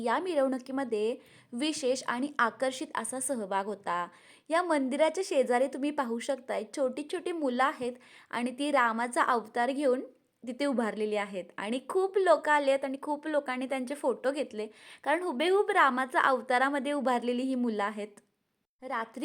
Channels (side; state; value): both; identical; correlation 1.00